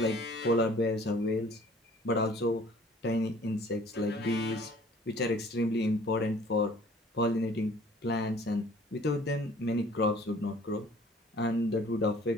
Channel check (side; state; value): both; normal; correlation 0.53